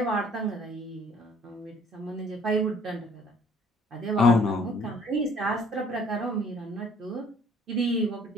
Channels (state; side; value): normal; both; correlation 0.58